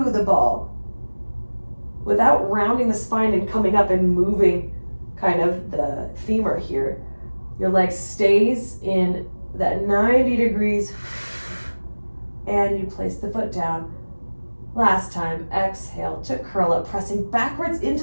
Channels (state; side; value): inverted; both; correlation -1.00